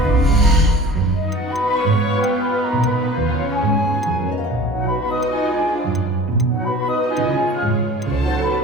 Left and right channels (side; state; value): both; normal; correlation 0.44